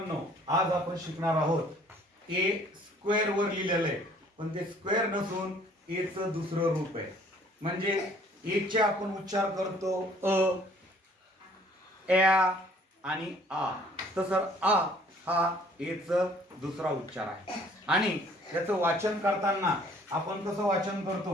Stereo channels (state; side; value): normal; both; correlation 0.57